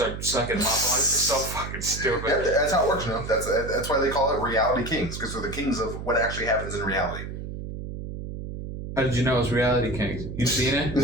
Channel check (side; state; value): right; noise; hum, 8 dB below the sound